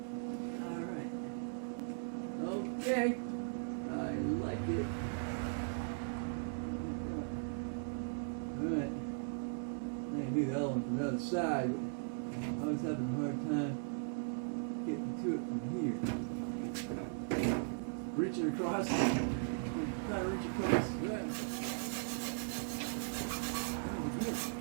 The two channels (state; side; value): silent; left; 52 dB below the other